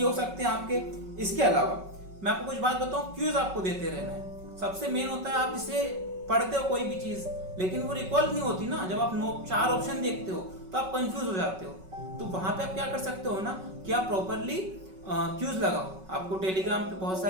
हो सकते हैं आपके। इसके अलावा मैं आपको कुछ बात बताऊं, क्यूज आपको देते रहना है। सबसे मेन होता है आप इसे पढ़ते हो कोई भी चीज, लेकिन वो रिकॉल नहीं होती ना। जब आप 4 ऑप्शन देखते हो तो आप कंफ्यूज हो जाते हो। तो वहां पे आप क्या कर सकते हो ना कि आप प्रॉपरली क्यूज लगाओ। आपको टेलीग्राम पे बहुत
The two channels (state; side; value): late; left; 5.3 ms